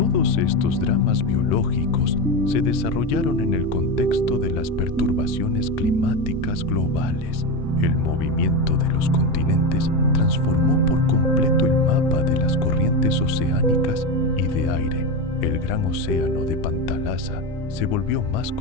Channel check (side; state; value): both; normal; correlation 0.16